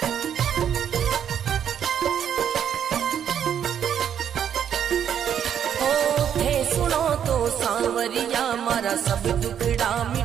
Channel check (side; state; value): left; quieter; 9.0 dB